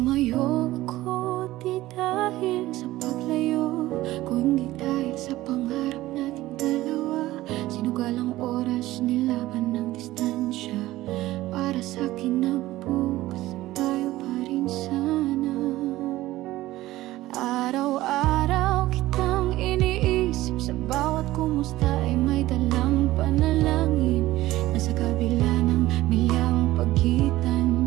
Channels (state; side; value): quieter; left; 16.7 dB